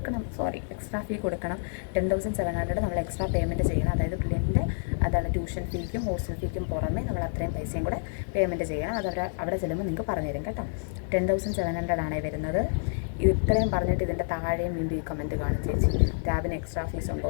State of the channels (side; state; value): right; silent; digital silence